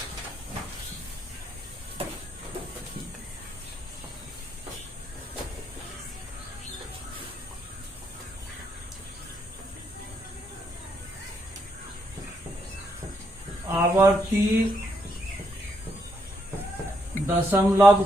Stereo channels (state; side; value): normal; both; correlation 0.76